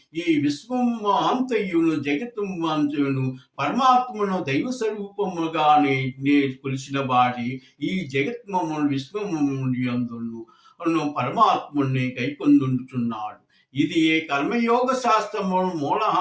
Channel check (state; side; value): identical; both; correlation 1.00